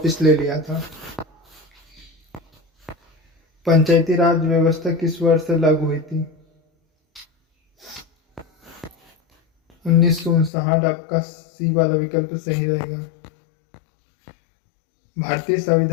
ले लिया था। पंचायती राज व्यवस्था किस वर्ष से लागू हुई थी? 1959, आपका सी वाला विकल्प सही रहेगा। भारतीय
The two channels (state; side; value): drops out; right; at 10.5 s